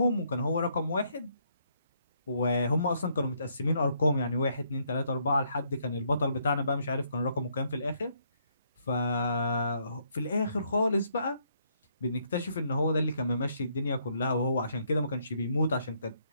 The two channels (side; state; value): both; inverted; correlation -0.72